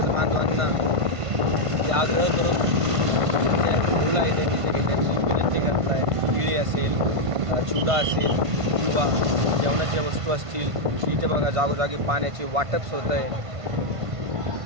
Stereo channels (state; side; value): late; left; 1.5 ms